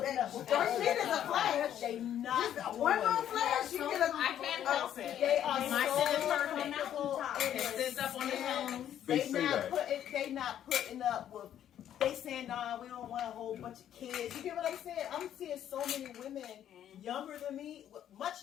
shit is a flash. They not Just one more flash, you get a. I can't help it. They are My shit is so perfect. comfortable in It sits up on the their phone. They They say not that. putting up with. They saying, nah, we don't want a whole bunch of kids. You get what I'm saying? I'm seeing so many women younger than me, much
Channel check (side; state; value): right; quieter; 10.6 dB